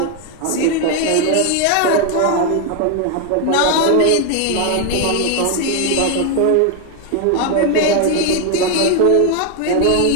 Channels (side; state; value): both; different; correlation 0.01